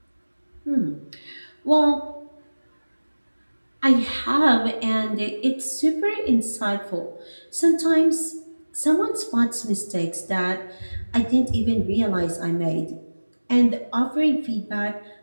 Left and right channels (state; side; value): inverted; both; correlation -1.00